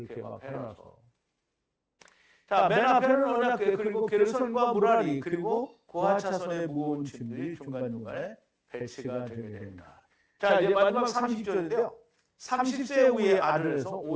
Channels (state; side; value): identical; both; correlation 1.00